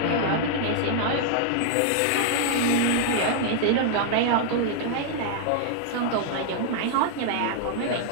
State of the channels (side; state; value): both; different; correlation -0.01